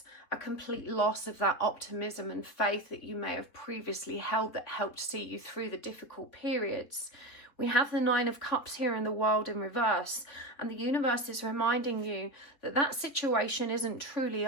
a complete loss of that optimism and faith that you may have previously held that helped see you through the difficult periods. We have the Nine of Cups here in the World in reverse, and the universe is reminding you that that situation isn't truly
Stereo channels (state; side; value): late; right; 3.5 ms